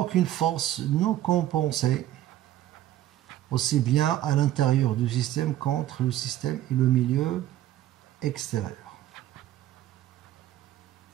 force non compensée, aussi bien à l'intérieur du système qu'entre le système et le milieu extérieur.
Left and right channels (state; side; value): quieter; left; 13.2 dB